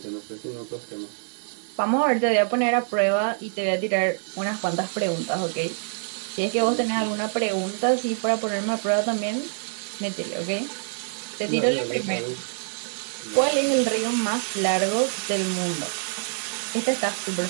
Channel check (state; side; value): silent; left; 61 dB below the other